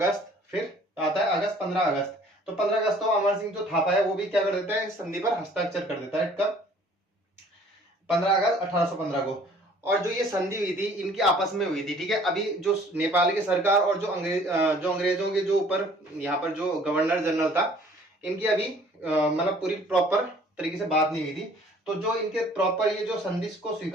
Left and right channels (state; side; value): normal; both; correlation 0.54